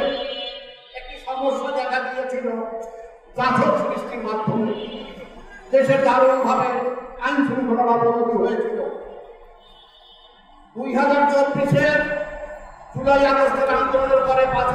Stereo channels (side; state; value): both; identical; correlation 1.00